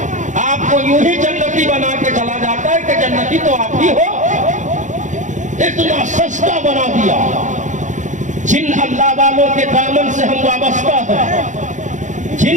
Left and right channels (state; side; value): late; left; 0.36 ms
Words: آپ کو یوں ہی جنتی بنا کے چلا جاتا ہے کہ جنتی تو آپ ہی ہو۔ اتنا سستا بنا دیا۔ جن اللہ والوں کے دامن سے ہم وابستہ ہیں،